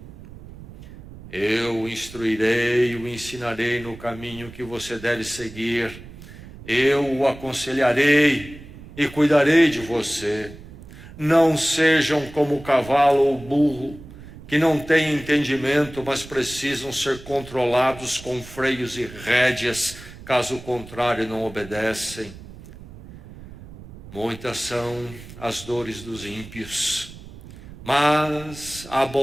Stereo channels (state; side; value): noise; right; rumble, 17 dB below the sound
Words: Eu o instruirei e o ensinarei no caminho que você deve seguir. Eu o aconselharei e cuidarei de você. Não sejam como o cavalo ou o burro, que não têm entendimento, mas precisam ser controlados com freios e rédeas, caso contrário não obedecem. Muitas são as dores dos ímpios, mas a